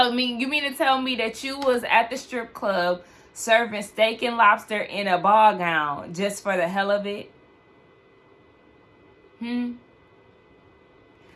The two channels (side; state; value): both; identical; correlation 1.00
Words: you mean to tell me that you was at the strip club serving steak and lobster in a ball gown just for the hell of it?